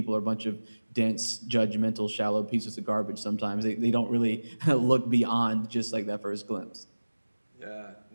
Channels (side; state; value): both; inverted; correlation -1.00